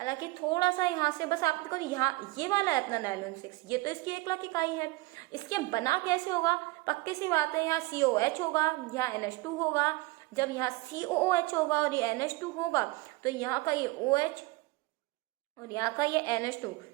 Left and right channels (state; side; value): quieter; left; 21.6 dB